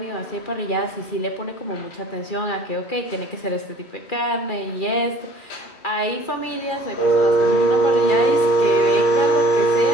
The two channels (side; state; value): right; late; 2.4 ms